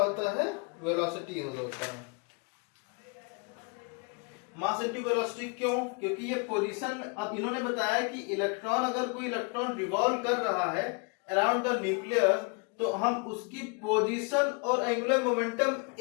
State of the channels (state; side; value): quieter; right; 33.1 dB